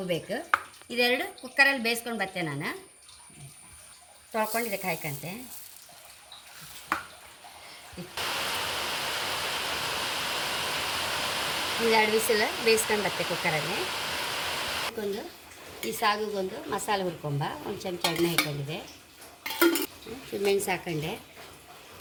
ಬೇಕು. ಇದೆರಡು ಕುಕ್ಕರಲ್ಲಿ ಬೇಯಿಸ್ಕೊಂಡು ಬರ್ತೆ. ನಾನು ತೊಳ್ಕೊಂಡು ಇದಕ್ಕೆ ಹಾಕಂತೆ. ಒಂದೆರಡು ವಿಸಿಲ್ ಬೇಯಿಸ್ಕೊಂಡು ಬರ್ತೆ ಕುಕ್ಕರಲ್ಲಿ. ಈ ಸಾಗುಗೊಂದು ಮಸಾಲೆ ಹುರ್ಕೊಂಬ. ಒಂದು ಚಮಚ ಎಣ್ಣೆ ಹಾಕೊಂಡಿದೆ, ಮೆಣಸು ಹಾಕೊಂಡೆ,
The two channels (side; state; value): both; identical; correlation 1.00